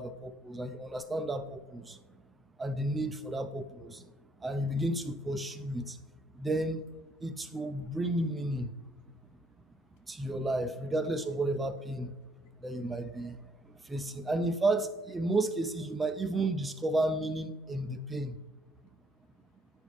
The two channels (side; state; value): both; normal; correlation 0.70